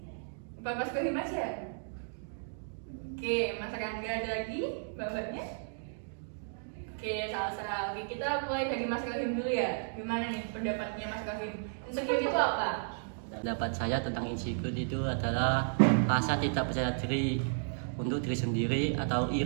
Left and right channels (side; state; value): left; silent; digital silence